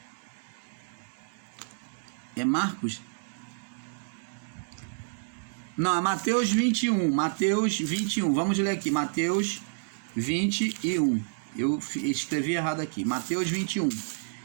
é Marcos? Não, é Mateus 21. Mateus 21. Vamos ler aqui. Mateus 21. Eu escrevi errado aqui. Mateus 21.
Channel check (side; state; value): left; silent; digital silence